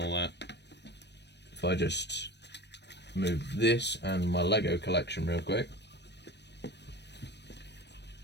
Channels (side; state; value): right; late; 0.50 ms